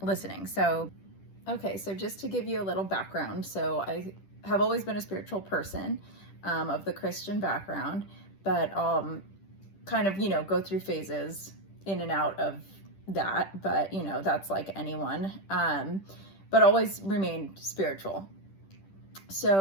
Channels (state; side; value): late; right; 10 ms